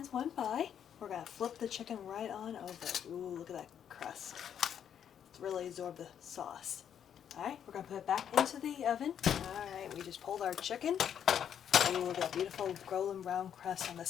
went by. We're going to flip the chicken right on over. Ooh, look at that crust. It's really absorbed the sauce. Alright, we're going to put it back into the oven. Alright, we just pulled our chicken. Ooh, look at that beautiful golden brown crust on the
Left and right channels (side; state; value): right; quieter; 8.9 dB